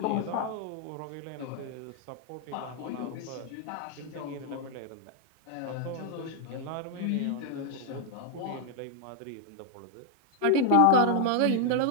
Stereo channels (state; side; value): different; both; correlation 0.00